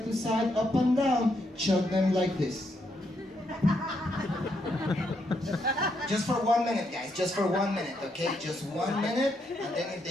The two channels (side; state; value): both; normal; correlation 0.77